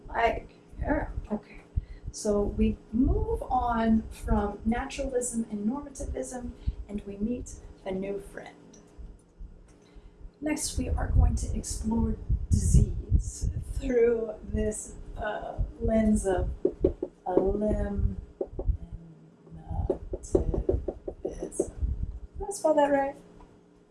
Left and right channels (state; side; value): identical; both; correlation 1.00